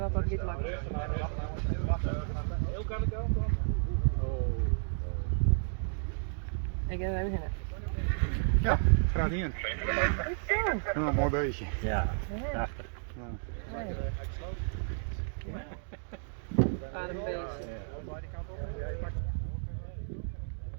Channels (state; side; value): silent; left; digital silence